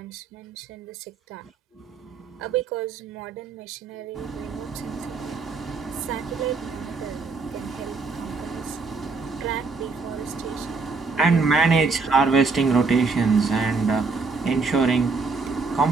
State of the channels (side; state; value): left; quieter; 4.3 dB